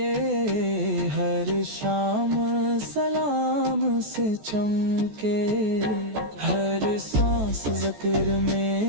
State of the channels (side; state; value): left; late; 14 ms